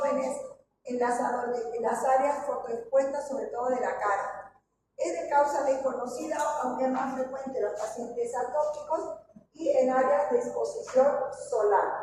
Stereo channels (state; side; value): identical; both; correlation 1.00